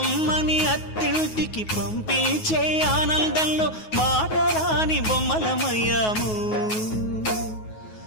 అత్తింటికి పంపించే ఆనందంలో మాటరాని బొమ్మలమయ్యాము,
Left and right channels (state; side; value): late; right; 9.4 ms